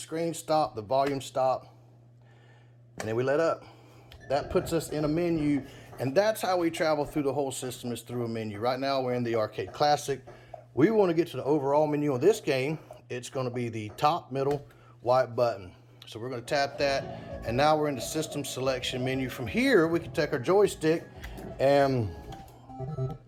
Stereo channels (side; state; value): both; identical; correlation 1.00